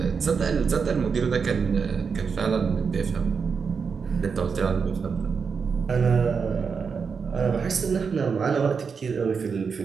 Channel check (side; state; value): left; quieter; 5.7 dB